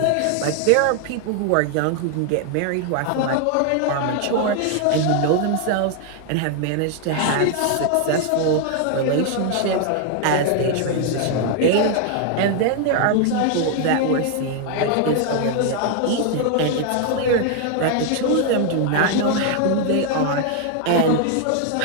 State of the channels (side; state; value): both; different; correlation 0.00